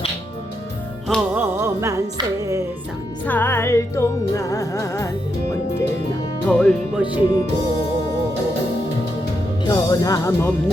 험한 세상 살 동안 언제나 돌보시고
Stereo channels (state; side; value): normal; both; correlation 0.82